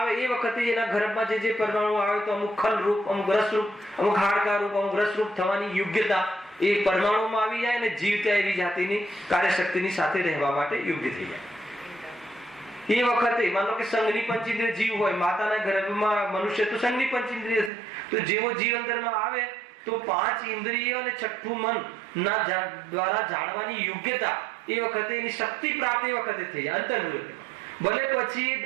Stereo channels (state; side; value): drops out; left; at 17.7 s